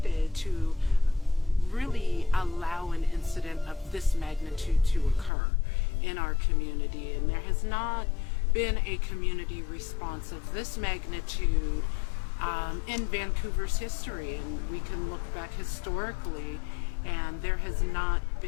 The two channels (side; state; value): right; drops out; at 5.3 s